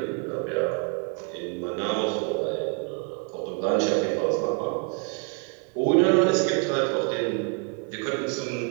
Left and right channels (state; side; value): quieter; left; 38.1 dB